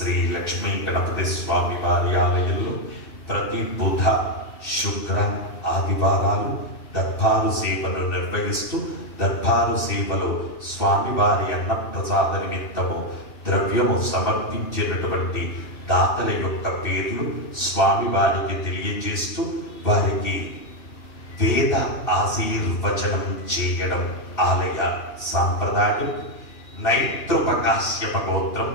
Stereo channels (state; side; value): late; right; 2.9 ms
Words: లక్ష్మీ గణపతి స్వామి వారి ఆలయంలో ప్రతి బుధ శుక్ర ఆదివారాలు దర్బారు సేవను నిర్వహిస్తూ దర్బారు సేవలో స్వామివారి అన్నప్రసాద నిమిత్తము ద్రవ్యము సమర్పించినటువంటి దాతల యొక్క పేర్లు స్వామివారికి తెలియజేస్తూ వారికి వేద ఆశీర్వచనం చేయడం ఆలయ సాంప్రదాయం. నైతృపకాశ్యప గోత్రం